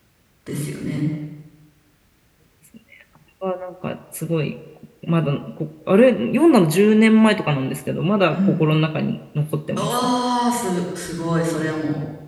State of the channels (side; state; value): both; identical; correlation 1.00